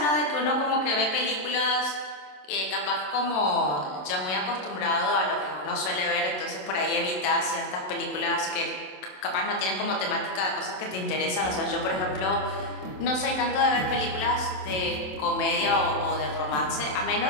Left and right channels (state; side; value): late; right; 27 ms